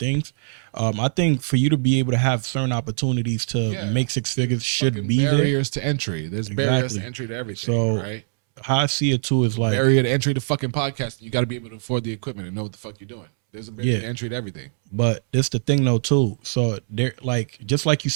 I think for you to be able to have certain opportunities to make six figures should be barriers to entry. There's barriers to entry to everything. So, right? How I see it too is like barrier to entry to fucking podcasting. You got to be able to afford the equipment and know what the fuck you're doing. There's a barrier to entry to everything. But it's the thing though too. So there, like just like you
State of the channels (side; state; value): left; silent; 64 dB below the other